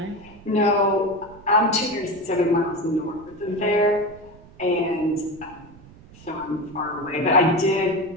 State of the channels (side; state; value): right; noise; rumble, 22 dB below the sound